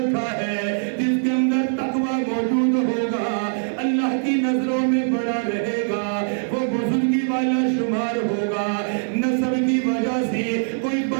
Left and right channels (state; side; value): silent; left; 64 dB below the other